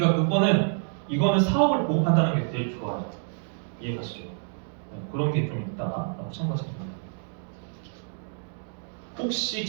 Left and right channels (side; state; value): left; silent; digital silence